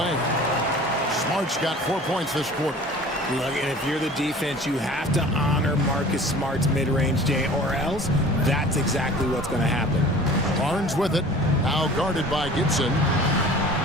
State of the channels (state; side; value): normal; both; correlation 0.44